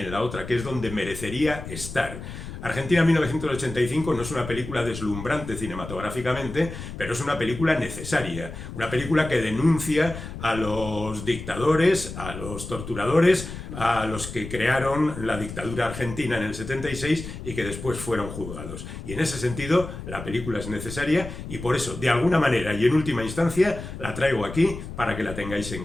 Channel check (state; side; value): noise; left; rumble, 10 dB below the sound